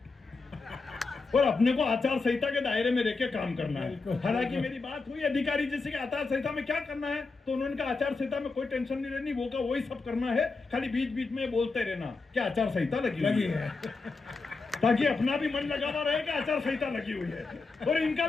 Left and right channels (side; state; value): right; quieter; 4.0 dB